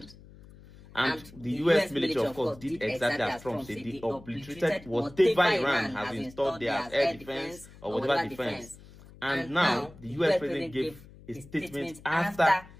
And the US military, of course, did exactly as Trump said. They obliterated whatever Iran has installed there as air defense or whatever defense. And now the US president gave a statement after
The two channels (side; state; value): left; noise; hum, 21 dB below the sound